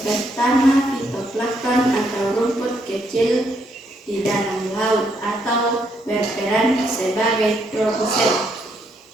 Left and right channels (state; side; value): normal; both; correlation 0.74